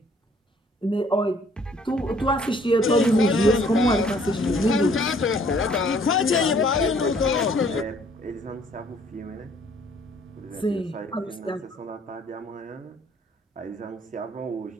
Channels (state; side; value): normal; both; correlation 0.60